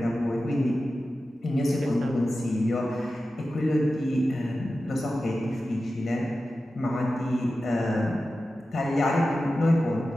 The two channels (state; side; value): normal; both; correlation 0.93